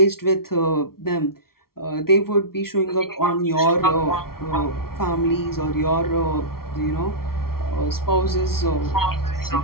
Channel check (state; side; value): late; right; 0.94 ms